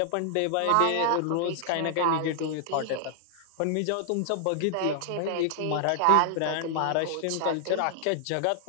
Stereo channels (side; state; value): both; different; correlation 0.00